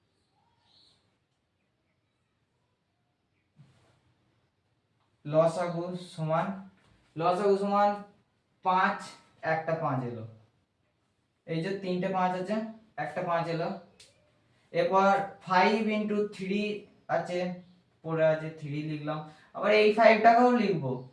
লসাগু সমান 5 একটা 5 এলো, এই যে তিনটে 5 আছে একটা 5 এলো। এরপর 5 ইনটু 3 আছে পড়ে আছে 3 লিখলাম, আবার এই 5টাকেও লিখবো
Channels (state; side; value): identical; both; correlation 1.00